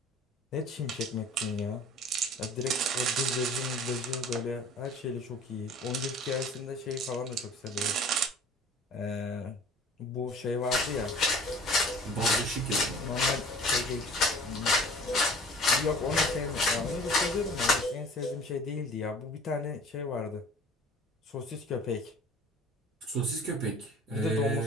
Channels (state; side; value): normal; both; correlation 0.47